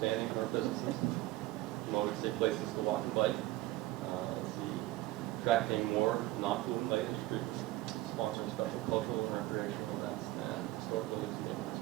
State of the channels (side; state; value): left; quieter; 17.2 dB